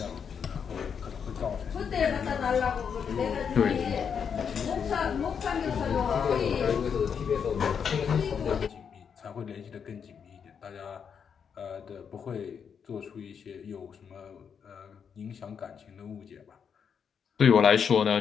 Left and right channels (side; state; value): right; quieter; 7.0 dB